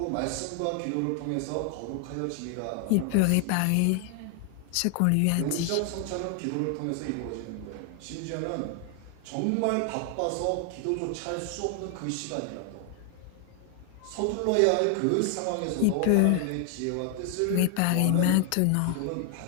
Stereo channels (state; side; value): different; both; correlation 0.00